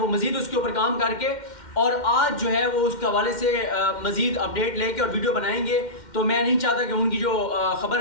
मज़ीद उसके ऊपर काम करके और आज जो है वो उसके हवाले से मज़ीद अपडेट लेके और वीडियो बनाएंगे। तो मैं नहीं चाहता कि उनकी जो खबर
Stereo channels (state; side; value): late; right; 2.1 ms